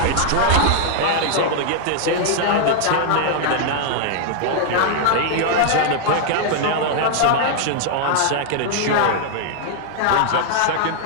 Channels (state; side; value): different; both; correlation 0.00